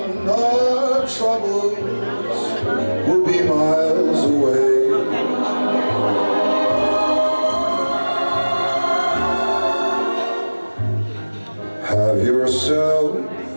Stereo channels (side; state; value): both; inverted; correlation -1.00